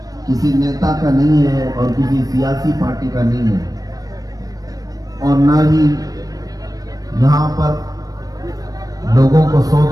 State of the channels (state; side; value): late; left; 0.18 ms